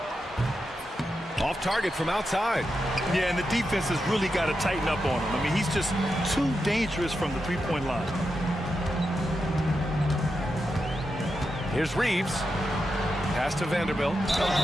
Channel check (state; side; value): normal; both; correlation 0.87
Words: Off target from outside. Yeah, and the defense has really got to tighten up on him. I mean, he's just too dangerous from the three-point line. Here's Reeves. Pass to Vanderbilt.